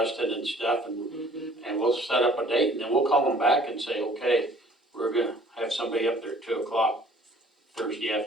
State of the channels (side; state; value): both; normal; correlation 0.54